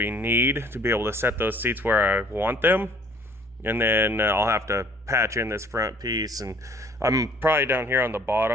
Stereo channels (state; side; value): normal; both; correlation 0.56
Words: need to be able to set those seats where I want them. And then I'll have to patch in this front piece, and I'm probably down here on the